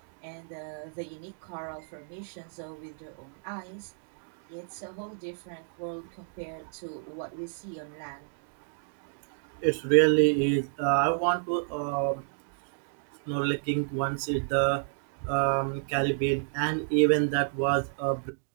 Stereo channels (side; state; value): left; silent; digital silence